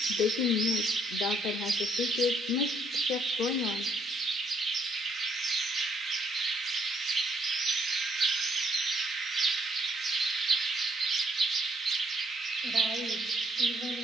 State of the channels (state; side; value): normal; both; correlation 0.69